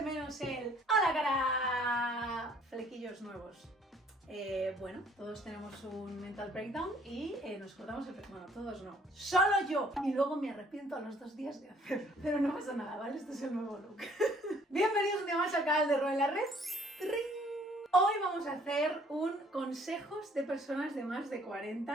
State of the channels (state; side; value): normal; both; correlation 0.60